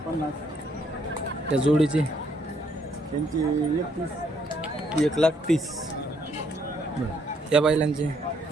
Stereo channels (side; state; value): both; normal; correlation 0.70